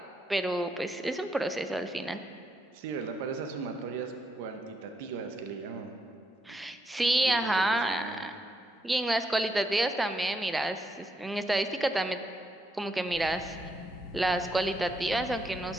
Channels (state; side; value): normal; both; correlation 0.78